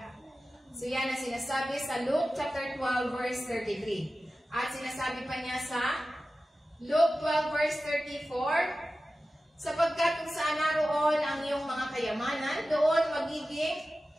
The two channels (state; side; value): normal; both; correlation 0.95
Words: So yan ang sinasabi sa Luke chapter 12 verse 33. At sinasabi pa niya sa Luke 12 verse 34, sapagkat kung saan naroon ang iyong mga kayamanan, doon magiging